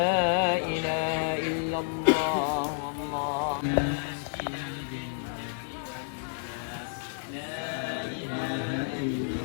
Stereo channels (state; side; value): silent; right; 58 dB below the other